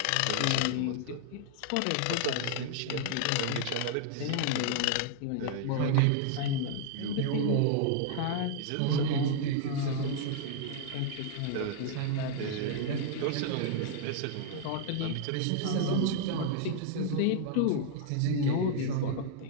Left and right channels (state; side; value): different; both; correlation -0.01